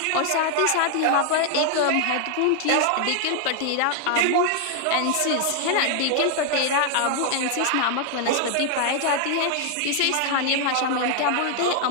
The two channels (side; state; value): both; different; correlation 0.00